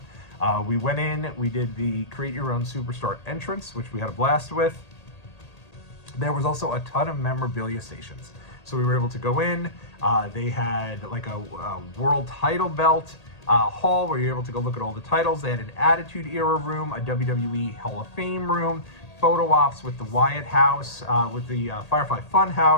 We went in, we did the Create Your Own Superstar entrance, which we had a blast with. There was also a ton of memorabilia stations. So we were able to go in, they had like a world title belt hall where you're able to go look at all the titles. They had an Attitude Era room, a WWE Hall of Fame room, photo ops with the Wyatt House, with the Firefly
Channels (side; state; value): right; late; 1.8 ms